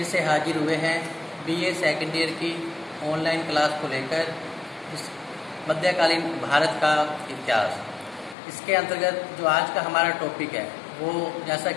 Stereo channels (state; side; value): drops out; right; at 8.3 s